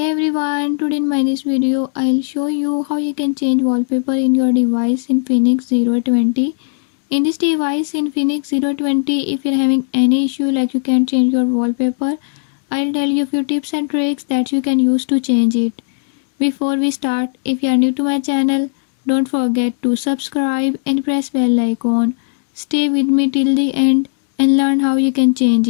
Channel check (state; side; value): silent; right; digital silence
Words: everyone, today in my this video I'll show you how you can change wallpaper in your device in Infinix 020. In this device in Infinix 020, if you're having any issue like you can't change your wallpaper, I'll tell you a few tips and tricks that you can use to change it. Before we start, if you are new to my channel, don't forget to subscribe and press bell icon. Stay with me till the end and learn how you can change